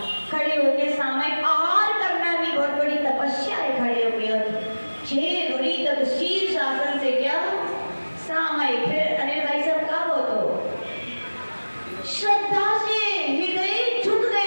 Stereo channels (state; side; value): inverted; both; correlation -1.00